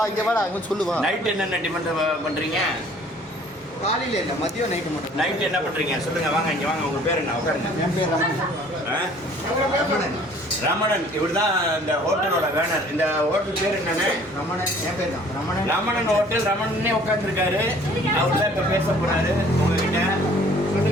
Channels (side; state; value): both; normal; correlation 0.54